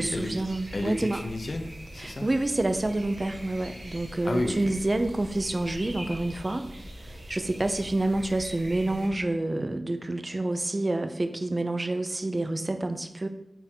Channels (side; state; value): both; normal; correlation 0.98